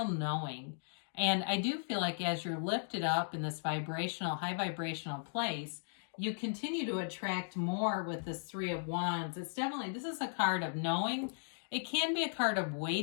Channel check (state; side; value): silent; right; digital silence